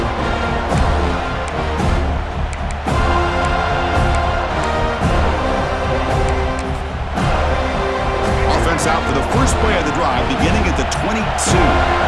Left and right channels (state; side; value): identical; both; correlation 1.00